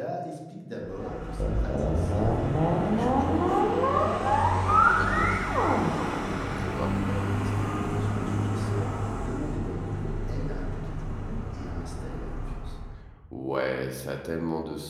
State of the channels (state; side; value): identical; both; correlation 1.00